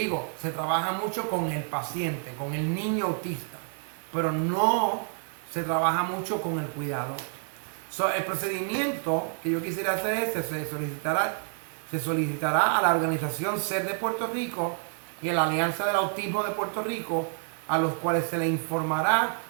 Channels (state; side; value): silent; left; 59 dB below the other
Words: se trabaja mucho con el paciente, con el niño autista, pero no se trabaja mucho con el cuidador. So, el procedimiento que yo quisiera hacer es, se solicitará a la organización SER de Puerto Rico y a la Alianza del Autismo de Puerto Rico, a los cuales se le informará